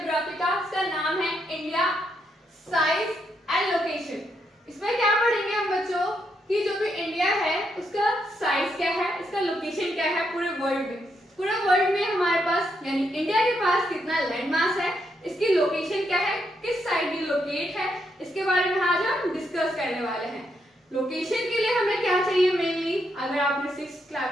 का, इसका नाम है इंडिया साइज एंड लोकेशन। इसमें क्या पढ़ेंगे हम बच्चों कि जो भी इंडिया है उसका साइज क्या है, इसका लोकेशन क्या है पूरे वर्ल्ड में। पूरे वर्ल्ड में हमारे पास यानी इंडिया के पास कितना लैंड मास है, इसकी लोकेशन क्या है, किस साइड ये लोकेट है, इसके बारे में आज हम डिस्कस करने वाले हैं। लोकेशन के लिए हमें क्या चाहिए मेनली, अगर आपने 6th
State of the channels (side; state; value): both; normal; correlation 0.79